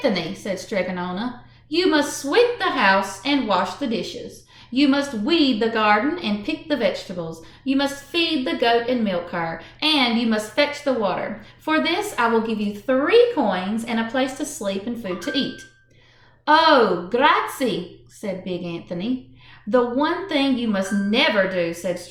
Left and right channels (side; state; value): both; identical; correlation 1.00